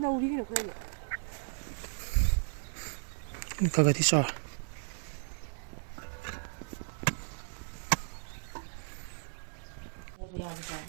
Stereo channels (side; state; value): left; silent; 55 dB below the other